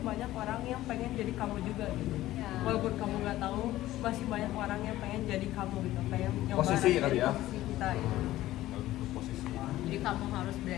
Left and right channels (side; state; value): right; quieter; 15.3 dB